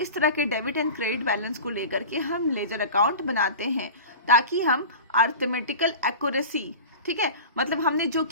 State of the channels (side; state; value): both; inverted; correlation -0.33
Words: तरह के डेबिट एंड क्रेडिट बैलेंस को लेकर के हम लेजर अकाउंट बनाते हैं ताकि हम अर्थमेटिकल एक्यूरेसी, ठीक है, मतलब हमने जो